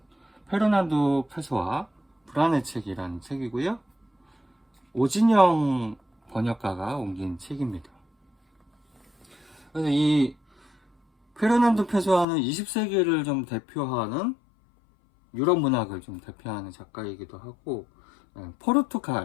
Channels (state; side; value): drops out; right; at 12.2 s